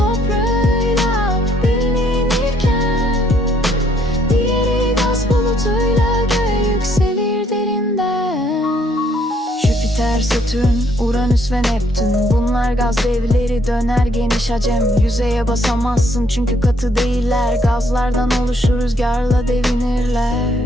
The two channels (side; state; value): both; normal; correlation 0.68